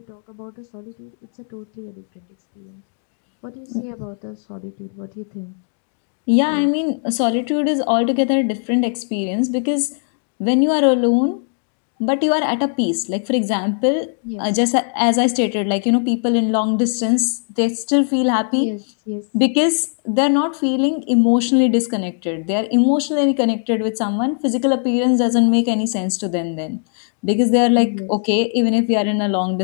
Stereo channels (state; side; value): silent; right; 66 dB below the other